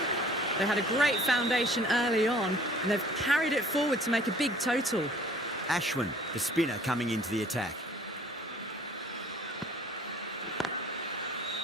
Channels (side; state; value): both; normal; correlation 0.53